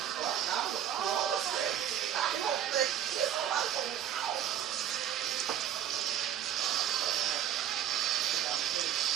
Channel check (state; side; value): quieter; left; 10.5 dB